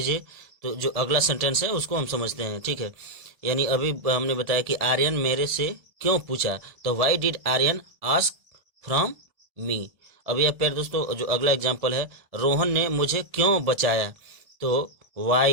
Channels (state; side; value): late; left; 1.7 ms